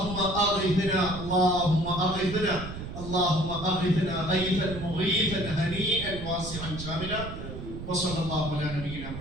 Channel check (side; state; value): right; noise; rumble, 9 dB below the sound